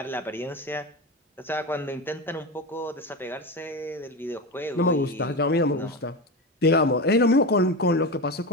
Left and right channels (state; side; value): normal; both; correlation 0.20